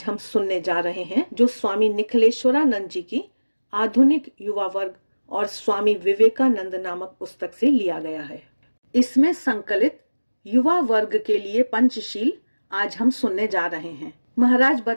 हम सुनने जा रहे हैं, जो स्वामी निखिलेश्वरानंद जी की आधुनिक युवा वर्ग और स्वामी विवेकानंद नामक पुस्तक से लिया गया है। इसमें संकलित युवा वर्ग के लिए पंचशील आज हम सुनने जा रहे हैं। महाराज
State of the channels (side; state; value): both; inverted; correlation -1.00